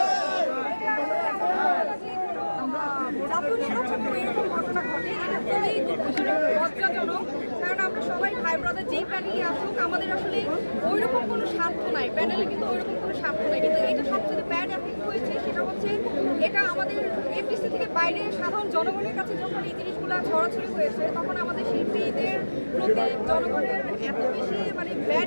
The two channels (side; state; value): both; inverted; correlation -1.00